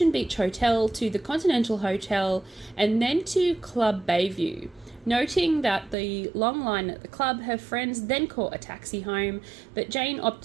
Beach Hotel to the Continental Hotel and then to Club Bayview. Noting that the long line at the club, her friends then caught a taxi home, but Jane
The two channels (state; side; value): drops out; left; at 6.0 s